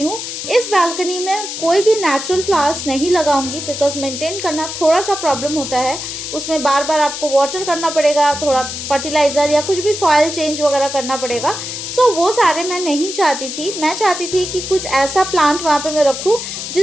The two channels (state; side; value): noise; left; hiss, 7 dB below the sound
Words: हूँ। इस बालकनी में कोई भी नेचुरल फ्लावर्स नहीं लगाऊंगी बिकॉज मेंटेन करना थोड़ा सा प्रॉब्लम होता है, उसमें बार बार आपको वाटर करना पड़ेगा, थोड़ा फर्टिलाइज़र या कुछ भी सॉइल चेंज वगैरह करना पड़ेगा। सो वो सारे मैं नहीं चाहती थी, मैं चाहती थी कि कुछ ऐसा प्लांट वहाँ पे मैं रखूँ